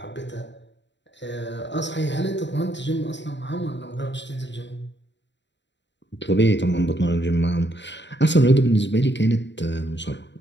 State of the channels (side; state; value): right; late; 0.52 ms